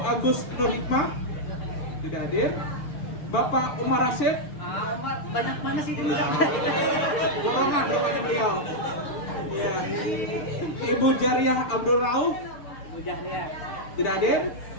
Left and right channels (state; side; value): late; right; 6.6 ms